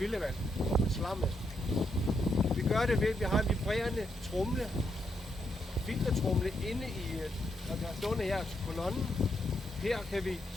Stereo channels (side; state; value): both; normal; correlation 0.80